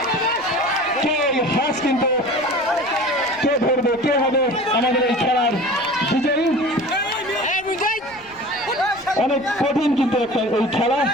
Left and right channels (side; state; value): left; noise; rumble, 26 dB below the sound